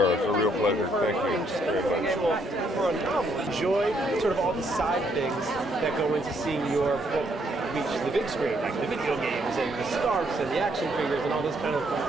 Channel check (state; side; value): normal; both; correlation 0.72